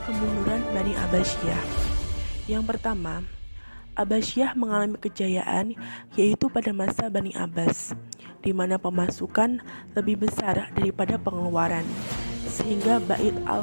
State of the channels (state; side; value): inverted; both; correlation -1.00